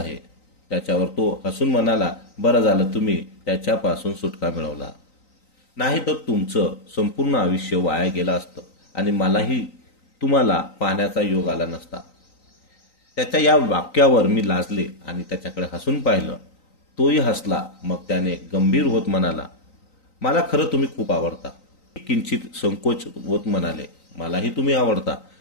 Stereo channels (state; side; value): late; right; 3.9 ms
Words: त्याच्यावर तो हसून म्हणाला, बरं झालं तुम्ही त्याच्यापासून सुटका मिळवला. नाही तर तुमचं संपूर्ण आयुष्य वाया गेलं असतं आणि मलाही तुम्हाला पाहण्याचा योग आला नसता. त्याच्या या वाक्यावर मी लाजले आणि त्याच्याकडे हसून पाहिलं. तोही हसला. मग त्याने गंभीर होत म्हणाला, मला खरं तुम्ही खूप आवडता. किंचित संकोच होत म्हणाले, मलाही तुम्ही आवडता.